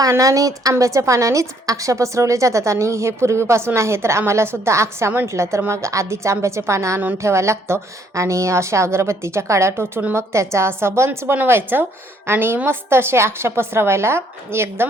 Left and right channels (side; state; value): both; normal; correlation 0.66